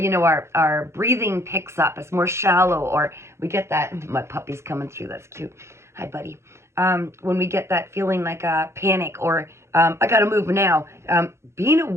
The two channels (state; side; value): late; left; 0.13 ms